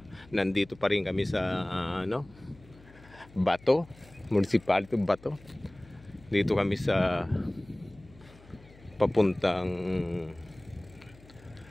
nandito pa rin kami sa Bato, municipality Bato. Dito kami sa papuntang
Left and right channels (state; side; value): noise; left; hum, 23 dB below the sound